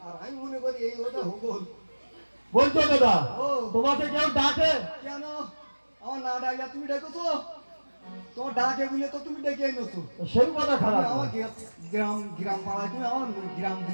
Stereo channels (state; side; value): inverted; both; correlation -1.00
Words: আর আমি মনে করি এই ওটা হবল বলছো দাদা? ও। তোমাকে কেউ ডাকে? কেন আমার না ডাকলে তুমি ডেকেছো তোমার ডাকে বলে তো তুমি ডেকে এনেছো সেই কথা খারাপ তুমি আমার না। গ্রাম গ্রাম পাড়ায় তুমি